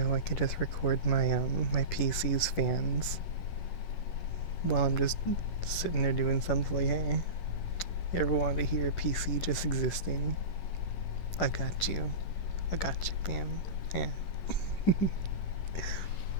I could just record my PC's fans while I'm just sitting there doing something like, hey, you ever want to hear a PC just existing? I got you. I got you, fam. Yeah.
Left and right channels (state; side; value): late; right; 10 ms